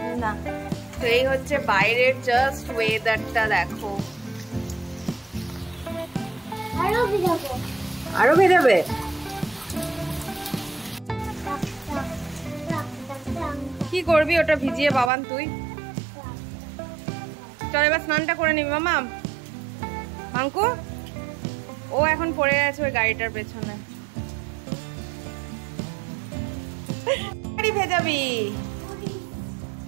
না, তো এই হচ্ছে বাইরের জাস্ট ওয়েদারটা দেখো। আরো ভেজাবে? কি করবি ওটা ভিজিয়ে বাবান তুই? চল এবার স্নানটা করে নিবি মামা। মাঙ্কু ও এখন পড়ে আছে ওই গাড়িটার পেছনে। গাড়ি ভেজাবি?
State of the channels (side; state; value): left; drops out; at 15.1 s